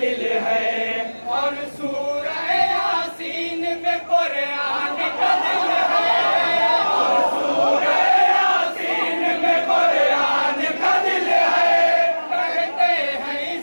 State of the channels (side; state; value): both; inverted; correlation -1.00